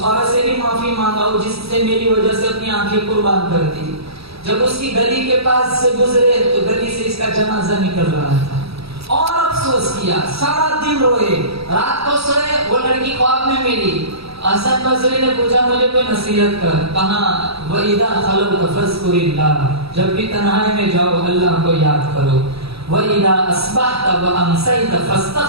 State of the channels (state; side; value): late; left; 0.77 ms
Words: عورت سے بھی معافی مانگا جس سے میری وجہ سے اپنی آنکھیں قربان کر دی. جب اس کی گلی کے پاس سے گزرے تو گلی سے اس کا جنازہ نکل رہا تھا اور افسوس کیا, سارا دن روئے. رات کو سوئے, وہ لڑکی خواب میں ملی. حسن بصری نے پوچھا مجھے کوئی نصیحت کر. کہا وَإِذَا خَلَوْتَ فَاذْكُرِ اللَّهَ, جب بھی تنہائی میں جاؤ اللہ کو یاد کرو. وَإِذَا أَصْبَحْتَ وَأَمْسَيْتَ